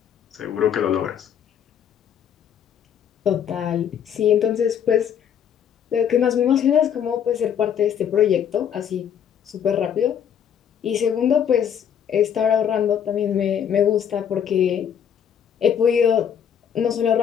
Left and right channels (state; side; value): quieter; right; 8.6 dB